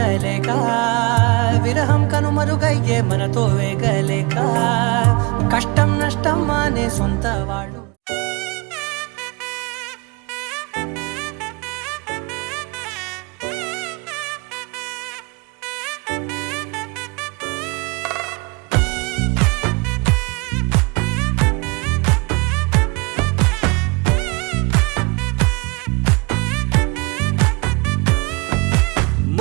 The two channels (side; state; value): left; quieter; 28.2 dB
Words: విరహం కనుమరుగయ్యే మనతో వేగలేక కష్టం నష్టం అనే సొంత వాడు